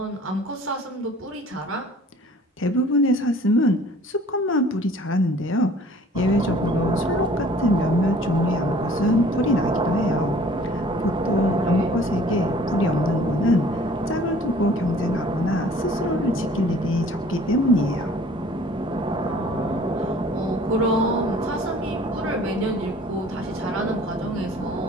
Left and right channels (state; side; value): normal; both; correlation 0.51